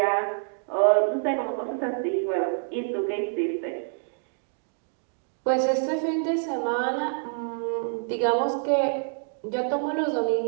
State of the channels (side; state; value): left; silent; digital silence